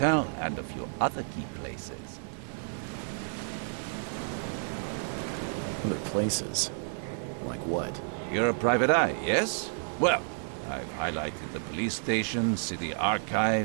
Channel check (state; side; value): silent; left; digital silence